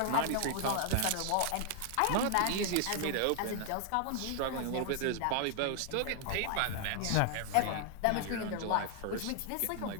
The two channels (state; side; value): different; both; correlation 0.00